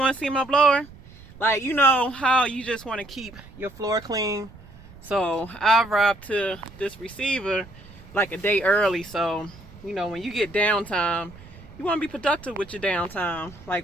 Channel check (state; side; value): noise; right; rumble, 20 dB below the sound